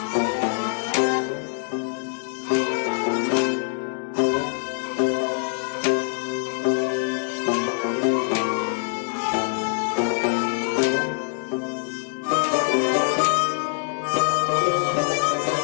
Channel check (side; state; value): right; silent; digital silence